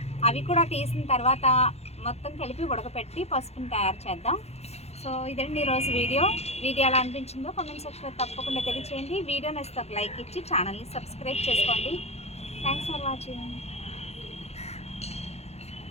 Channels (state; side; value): late; right; 0.31 ms